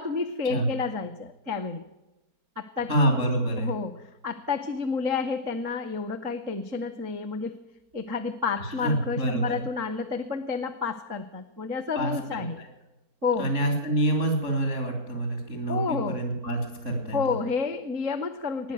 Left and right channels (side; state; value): left; late; 4.3 ms